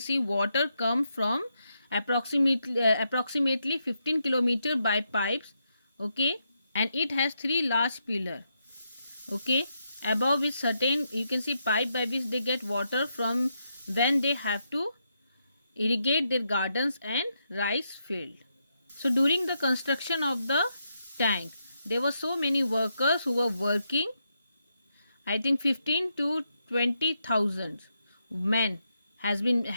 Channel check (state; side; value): inverted; both; correlation -0.81